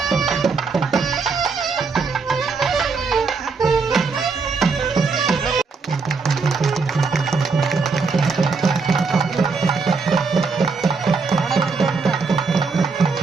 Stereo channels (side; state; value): left; quieter; 4.7 dB